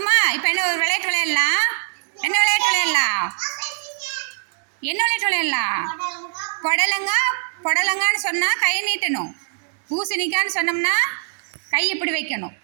இப்போ என்ன ஒரு விளையாட்டு விளையாடலாம். என்ன விளையாட்டு விளையாடலாம்? என்ன விளையாட்டு விளையாடலாம்? புடலங்கான்னு சொன்னால் கை நீட்டணும். பூசணிக்கான்னு சொன்னோம்னா கை இப்படி வைக்கணும்.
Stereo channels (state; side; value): silent; left; 64 dB below the other